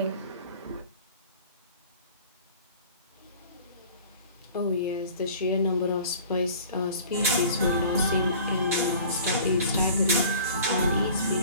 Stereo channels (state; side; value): inverted; both; correlation -0.46